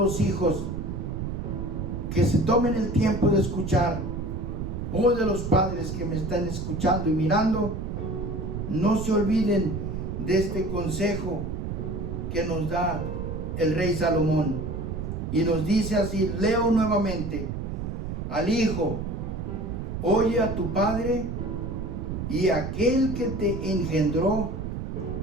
hijos que se tomen el tiempo de escuchar, o de los padres que me están escuchando y mirando, no se olviden de este consejo que nos da el rey Salomón. Y nos dice así, leo nuevamente: al hijo, oye a tu padre, y aquel que te engendró,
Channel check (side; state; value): right; noise; rumble, 4 dB below the sound